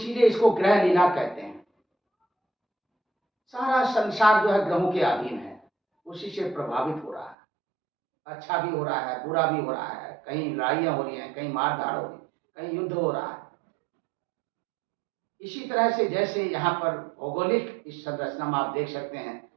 इसको ग्रह लीला कहते हैं। सारा संसार जो है ग्रहों के अधीन है, उसी से प्रभावित हो रहा है। अच्छा भी हो रहा है, बुरा भी हो रहा है, कहीं लड़ाइयाँ हो रही हैं, कहीं मारधाड़ हो रही है, कहीं युद्ध हो रहा है। इसी तरह से जैसे यहाँ पर भौगोलिक इस संरचना में आप देख सकते हैं,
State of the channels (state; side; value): drops out; left; at 7.4 s